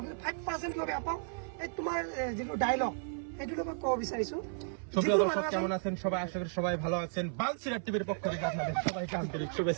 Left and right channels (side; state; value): left; silent; 55 dB below the other